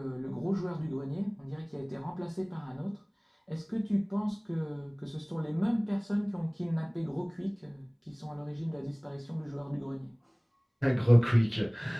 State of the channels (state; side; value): identical; both; correlation 1.00